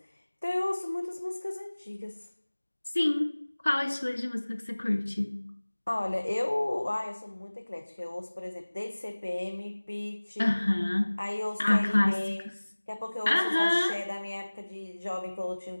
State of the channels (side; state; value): both; inverted; correlation -1.00